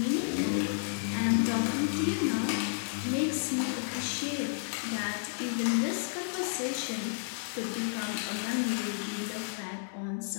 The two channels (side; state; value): right; silent; digital silence